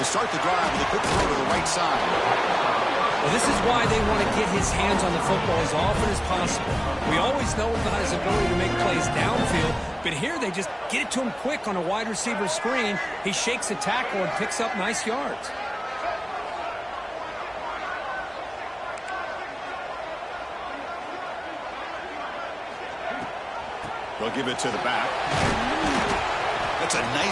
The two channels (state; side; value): identical; both; correlation 1.00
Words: Start the drive with a quick throw to the right side. Well, this is why they want to get his hands on the football as often as possible. We always know about his ability to make plays downfield, but here they just get it to him quick on a wide receiver screen. He shakes a tackle and picks up nice yards. They'll give it to the back. That's a